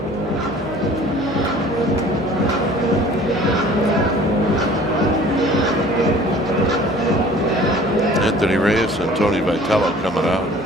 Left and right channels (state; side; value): normal; both; correlation 0.49